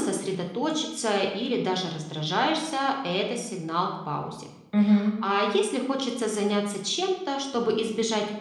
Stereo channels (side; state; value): both; identical; correlation 1.00